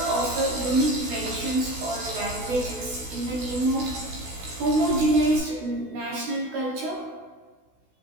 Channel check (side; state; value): left; late; 16 ms